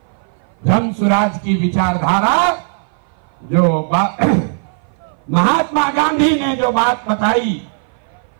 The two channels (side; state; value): left; silent; 58 dB below the other